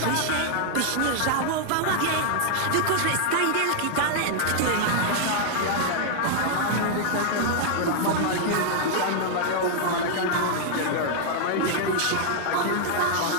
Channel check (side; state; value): both; different; correlation -0.01